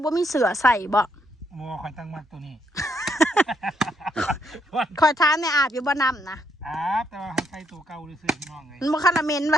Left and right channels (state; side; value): normal; both; correlation 0.74